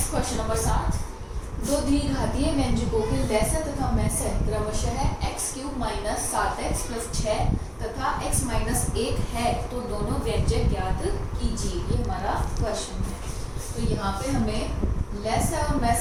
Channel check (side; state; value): both; identical; correlation 1.00